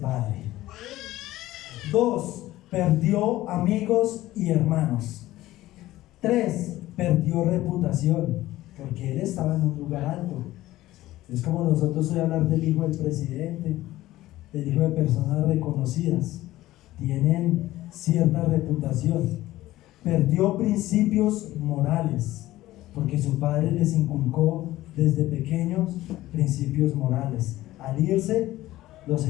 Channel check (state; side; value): quieter; right; 16.0 dB